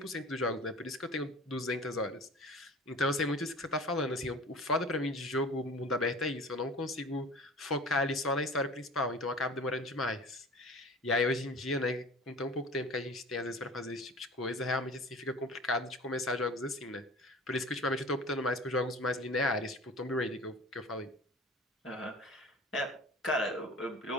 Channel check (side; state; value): both; normal; correlation 0.40